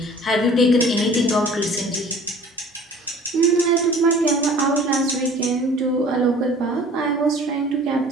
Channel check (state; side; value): normal; both; correlation 0.48